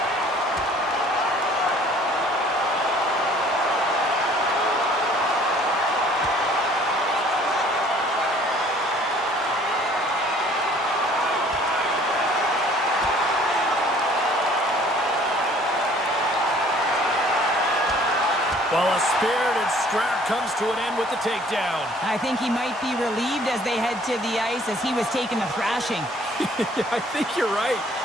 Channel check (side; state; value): both; normal; correlation 0.55